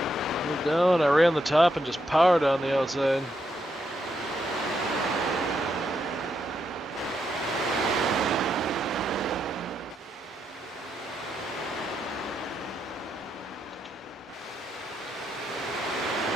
Moved down, I ran the top and just powered on the outside.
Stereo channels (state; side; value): normal; both; correlation 0.80